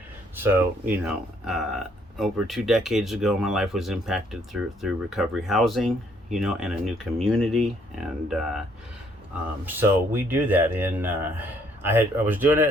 So over 2 decades ago, my life was impacted through recovery housing, and a new community, and so we do that. And I was doing it,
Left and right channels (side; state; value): both; normal; correlation 0.66